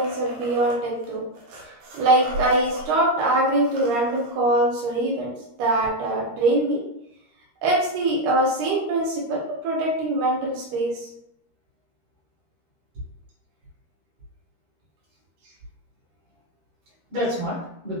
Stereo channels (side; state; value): left; late; 13 ms